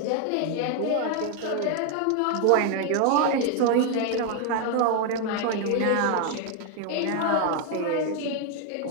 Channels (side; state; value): both; different; correlation 0.01